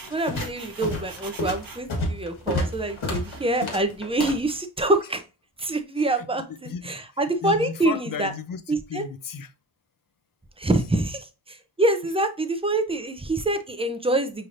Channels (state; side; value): normal; both; correlation 0.38